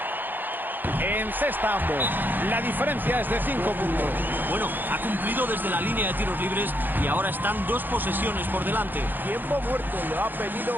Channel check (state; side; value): late; left; 0.090 ms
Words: encesta ambos. La diferencia es de 5 puntos. Bueno, ha cumplido desde la línea de tiros libres y ahora están 2 posesiones por delante. Tiempo muerto, lo ha pedido